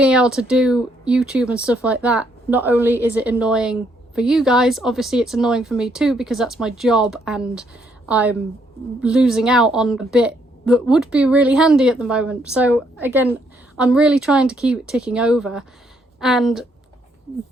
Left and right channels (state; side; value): normal; both; correlation 0.72